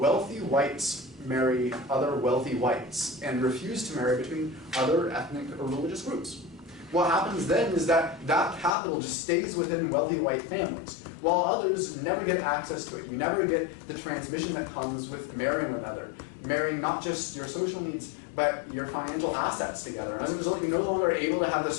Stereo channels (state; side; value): drops out; right; at 8.8 s